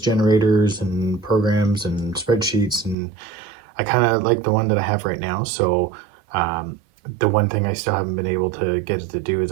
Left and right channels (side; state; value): left; drops out; at 3.0 s